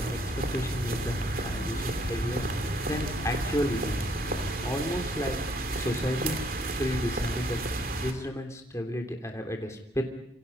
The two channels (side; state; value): both; normal; correlation 0.67